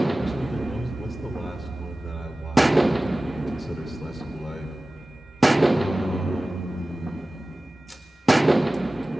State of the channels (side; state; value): both; normal; correlation 0.97